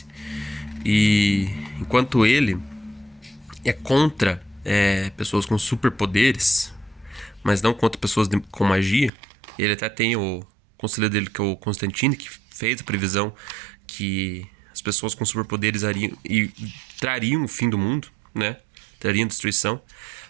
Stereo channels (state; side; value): drops out; left; at 9.1 s